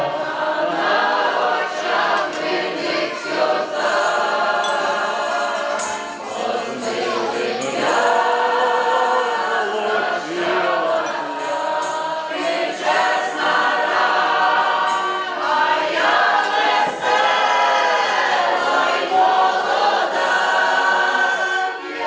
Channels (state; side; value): identical; both; correlation 1.00